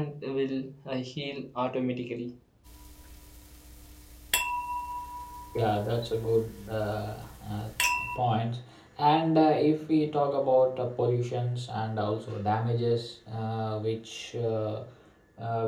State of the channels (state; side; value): identical; both; correlation 1.00